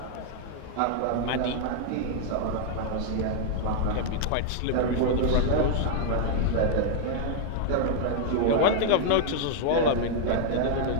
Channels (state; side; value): different; both; correlation -0.01